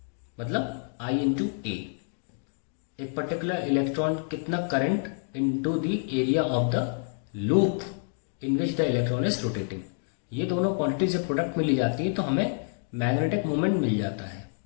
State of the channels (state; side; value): silent; right; digital silence